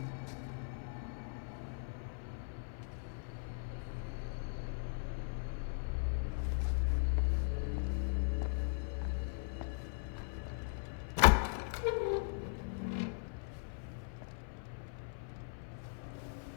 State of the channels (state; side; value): silent; right; 52 dB below the other